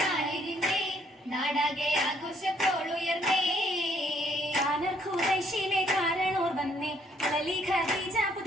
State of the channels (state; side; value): normal; both; correlation 0.68